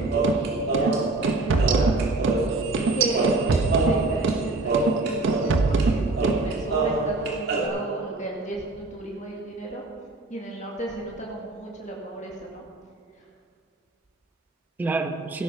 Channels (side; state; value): left; quieter; 3.0 dB